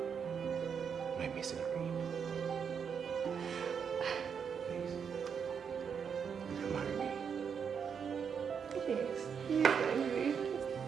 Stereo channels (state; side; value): quieter; left; 6.9 dB